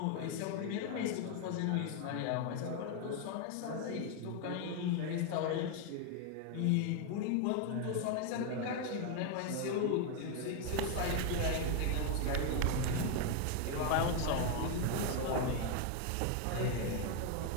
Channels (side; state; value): both; different; correlation 0.01